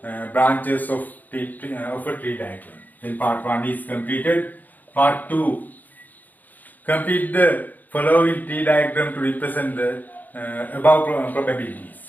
branches of a tree diagram. Then part 1 is completed. Part 2, complete the following tree diagram to represent the above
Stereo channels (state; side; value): late; right; 0.084 ms